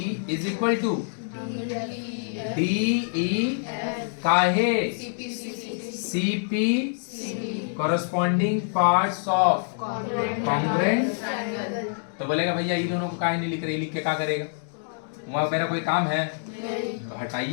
is equal to DE काहे? CP corresponding parts of congruent। तो बोलेगा भैया ये दोनों को काहे नहीं लिख रहे, लिख के क्या करेगा? वहां मेरा कोई काम है तो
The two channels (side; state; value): right; silent; digital silence